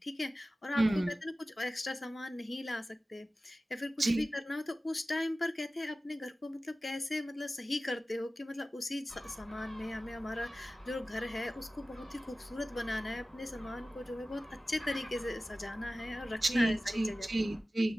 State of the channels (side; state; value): both; normal; correlation 0.96